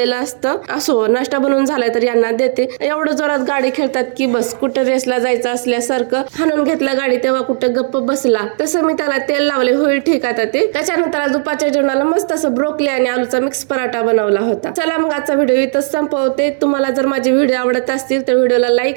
असतं. असो, नाश्ता बनवून झालाय तर यांना देते. एवढं जोरात गाडी खेळतात की बस, कुठं रेसला जायचं असल्यासारखं हाणून घेतलं गाडी तेव्हा कुठं गप्प बसला. तसं मी त्याला तेल लावले, होईल ठीक आता ते. त्याच्यानंतर दुपारच्या जेवणाला मस्त असं ब्रोकली आणि आलूचा मिक्स पराठा बनवला होता. चला मग आजचा व्हिडिओ इथंच संपवते. तुम्हाला जर माझे व्हिडिओ आवडत असतील तर व्हिडिओला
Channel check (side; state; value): left; silent; digital silence